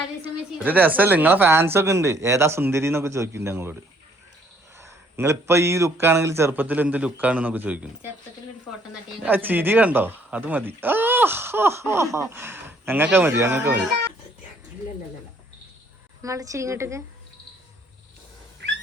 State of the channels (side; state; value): both; normal; correlation 0.64